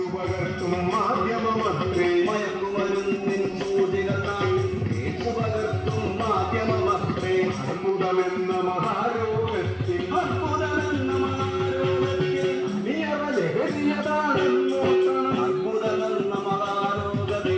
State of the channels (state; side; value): identical; both; correlation 1.00